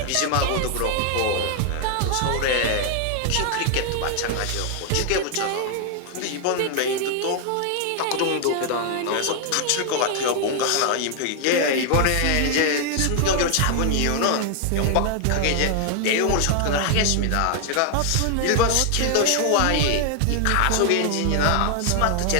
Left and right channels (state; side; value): different; both; correlation 0.00